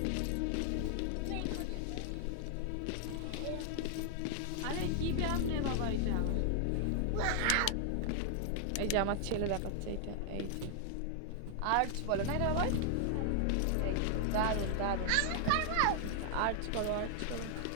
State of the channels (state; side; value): different; both; correlation 0.00